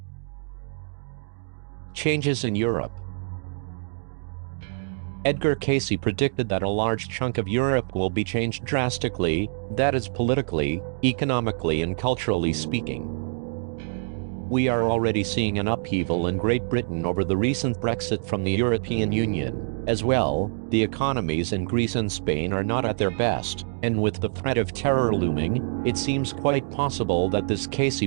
Changes in Europe. Edgar Casey predicted that a large chunk of Europe will be changed drastically, that is politically, economically and culturally speaking. We are already seeing an upheaval in Great Britain over the recent Brexit from the European Union. As well, the economies in Greece and Spain are not at their best, and with the threat of terror looming, it seems quite possible that this Casey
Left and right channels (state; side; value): silent; left; digital silence